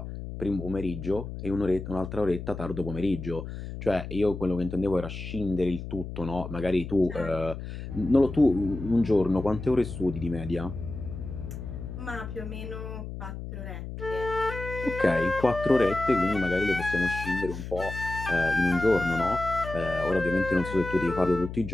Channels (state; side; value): noise; left; hum, 8 dB below the sound